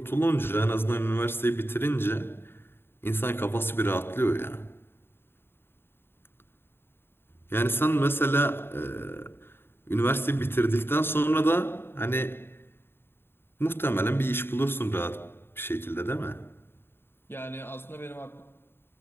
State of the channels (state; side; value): late; right; 0.11 ms